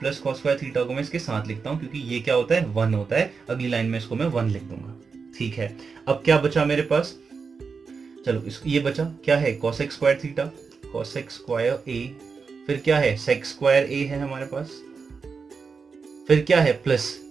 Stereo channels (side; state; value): left; quieter; 5.2 dB